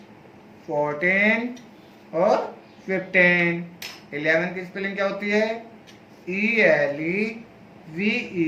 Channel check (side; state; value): both; identical; correlation 1.00